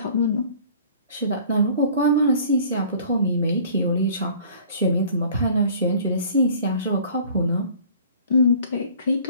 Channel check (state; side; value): inverted; both; correlation -0.50